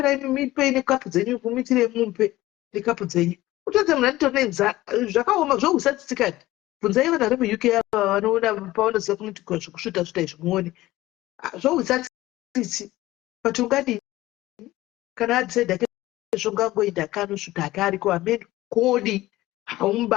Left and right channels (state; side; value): quieter; right; 16.9 dB